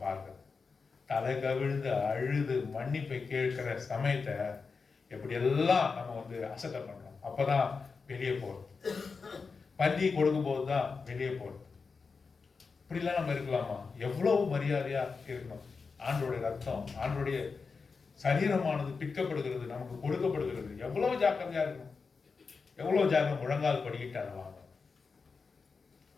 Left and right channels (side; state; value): right; quieter; 4.9 dB